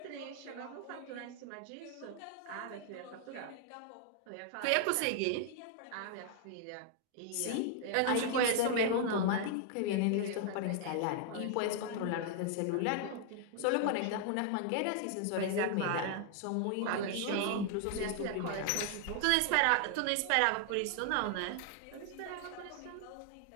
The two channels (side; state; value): both; different; correlation 0.00